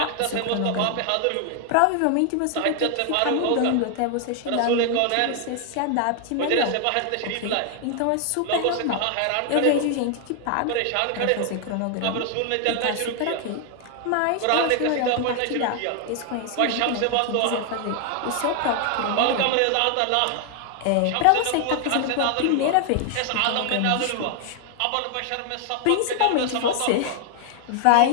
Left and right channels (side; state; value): both; different; correlation 0.00